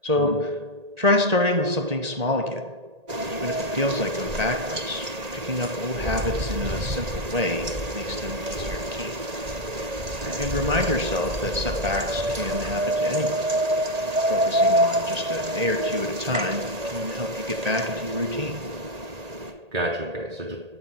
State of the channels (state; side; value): late; left; 1.8 ms